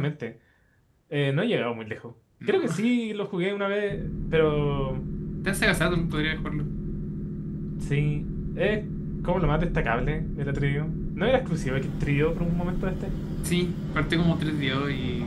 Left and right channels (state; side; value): identical; both; correlation 1.00